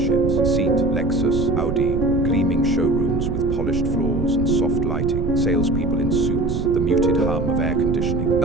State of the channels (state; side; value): noise; right; rumble, 3 dB below the sound